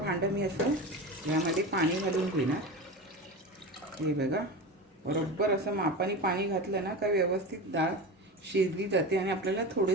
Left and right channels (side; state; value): both; normal; correlation 0.26